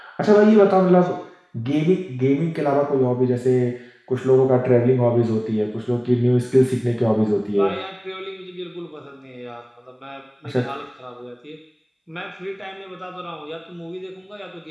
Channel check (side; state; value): both; identical; correlation 1.00